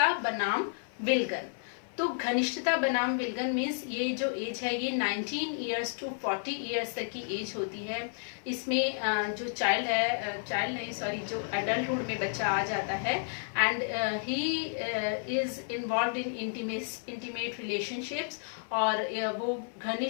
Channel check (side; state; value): right; silent; 57 dB below the other